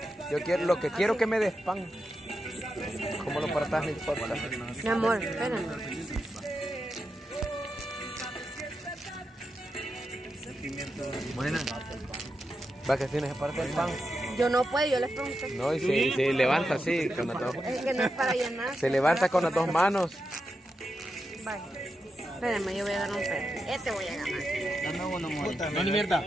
lo que quiero que me des pan. Como lo partas no importa. Mi amor, espérame. Buena. Va que tienes que partir el pan. Yo no puedo, yo les pregunté. No, y se levanta así con las dos. Es que no es para llenar. Se levanta con las dos manos. Vaya. Espérame, yo voy a dar un pedazo. Este voy a ganar. No, ni mierda.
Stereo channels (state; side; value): normal; both; correlation 0.87